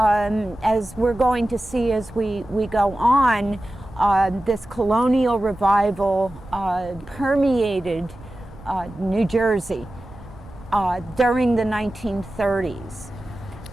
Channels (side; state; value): right; noise; rumble, 20 dB below the sound